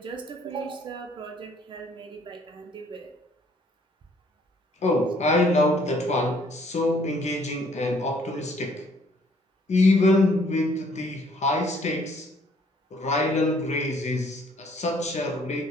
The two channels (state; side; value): normal; both; correlation 0.63